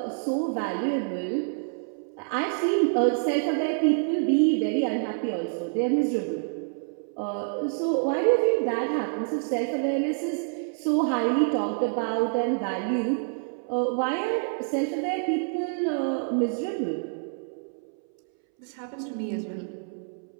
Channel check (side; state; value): left; silent; 60 dB below the other